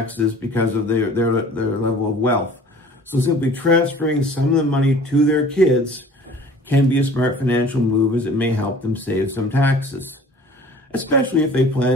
because of their level of wealth. So simply transferring some of the money to their kids can be a smart financial move, as it may help them save some taxes, especially if they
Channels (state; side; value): normal; both; correlation 0.47